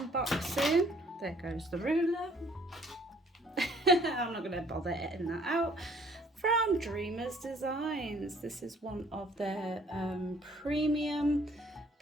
There goes the ruler. I'm not going to bother editing that out. From Dreamers Designs. This is one of their premium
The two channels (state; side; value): normal; both; correlation 0.60